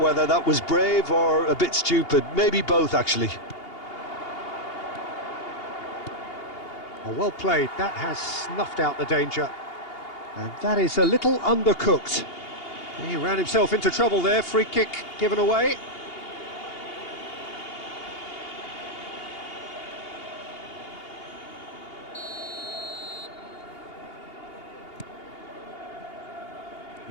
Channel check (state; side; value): late; right; 2.8 ms